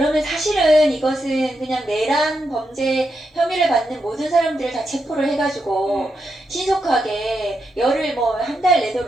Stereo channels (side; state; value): both; normal; correlation 0.84